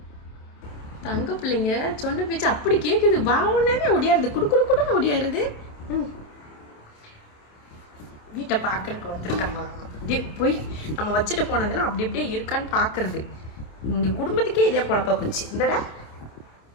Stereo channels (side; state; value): right; late; 27 ms